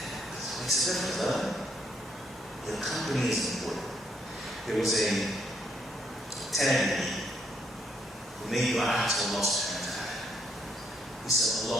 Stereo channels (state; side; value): normal; both; correlation 0.72